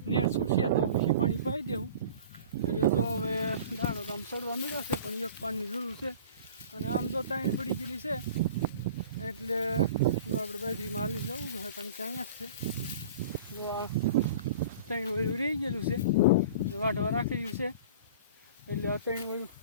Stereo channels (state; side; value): inverted; both; correlation -0.42